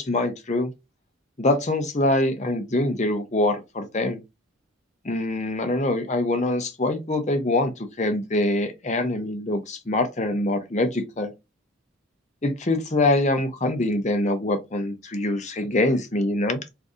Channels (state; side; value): normal; both; correlation 0.38